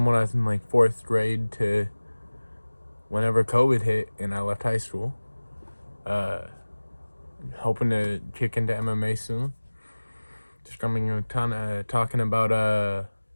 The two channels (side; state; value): both; inverted; correlation -1.00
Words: when I was in, 4th grade to whenever COVID hit and I left high school. Hoping to kick into MMA soon. Just coming a ton of talking about